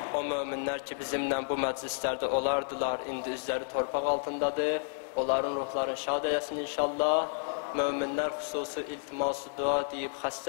O möminlər ki, bizimlə bu məclislərdə olardılar, indi üzləri torpaq altındadır. Onların ruhlarını şad eləsin inşallah. Möminlər xüsusi iltiması dua deyib,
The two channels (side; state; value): right; silent; 57 dB below the other